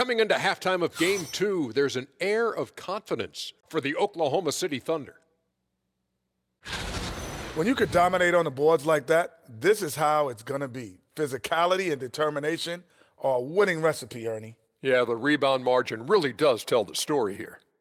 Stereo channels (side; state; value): both; identical; correlation 1.00